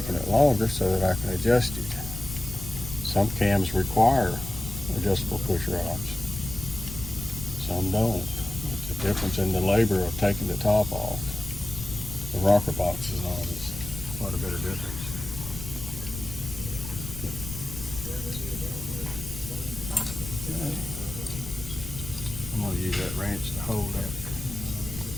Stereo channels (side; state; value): left; noise; rumble, 10 dB below the sound